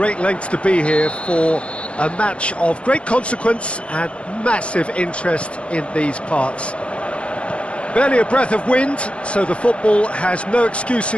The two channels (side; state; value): right; late; 0.060 ms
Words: lengths to be here for a match of great consequence and massive interest in these parts. Barely a breath of wind, so the football has no